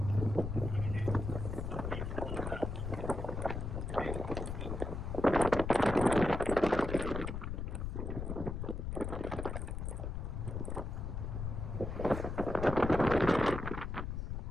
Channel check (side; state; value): left; noise; rumble, 4 dB below the sound